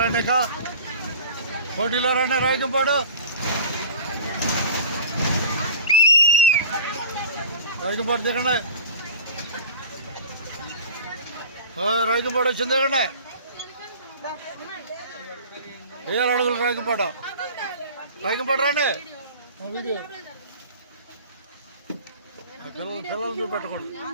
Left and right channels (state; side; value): inverted; both; correlation -0.41